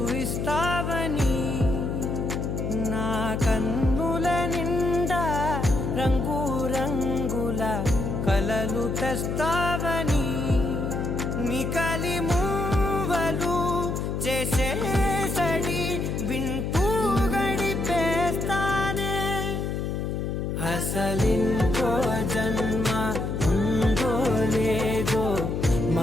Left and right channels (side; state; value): left; noise; hum, 2 dB below the sound